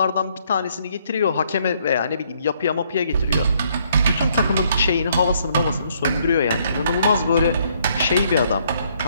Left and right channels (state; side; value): inverted; both; correlation -0.68